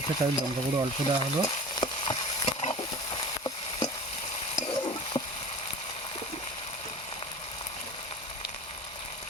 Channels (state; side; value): normal; both; correlation 0.37